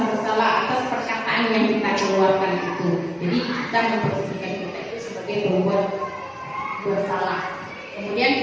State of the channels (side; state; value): both; identical; correlation 1.00